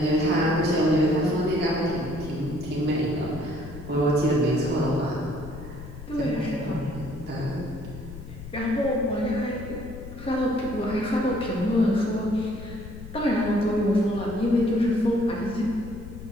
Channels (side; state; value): left; noise; rumble, 13 dB below the sound